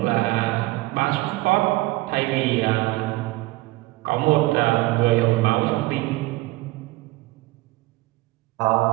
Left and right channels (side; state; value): left; quieter; 20.0 dB